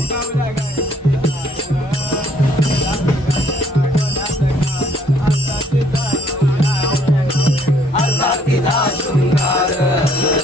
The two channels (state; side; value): normal; both; correlation 0.64